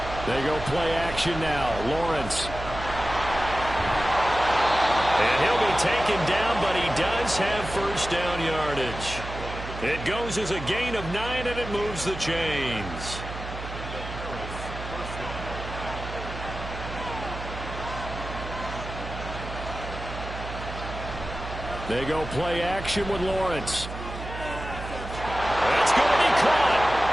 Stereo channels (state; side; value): noise; right; hum, 9 dB below the sound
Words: They go play action now. Lawrence. And he'll be taken down, but he does have first down yardage. It goes as a gain of 9, and it moves the chains. They go play action with Lawrence. That's going to be caught.